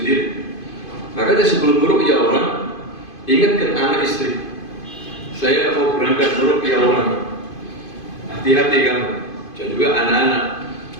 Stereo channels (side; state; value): right; late; 2.5 ms